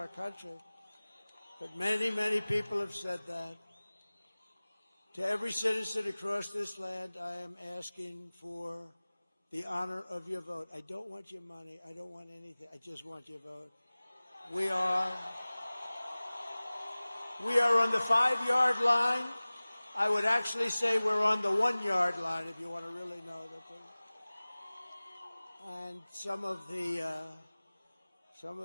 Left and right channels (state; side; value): inverted; both; correlation -0.99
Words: country. But many people have said that. To every citizen across this land, I am asking for the honor of your vote. I don't want your money. I don't want anything. I just want your vote. We are on the 5-yard line. I would actually say we're on the 1-yard line, if you want to really know that. And some of the,